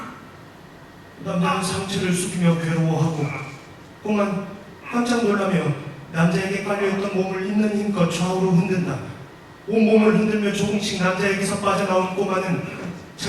남자는 상체를 숙이며 괴로워하고 꼬만 깜짝 놀라며 남자에게 깔려있던 몸을 있는 힘껏 좌우로 흔든다. 온몸을 흔들며 조금씩 남자에게서 빠져나온 꼬마는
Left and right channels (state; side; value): identical; both; correlation 1.00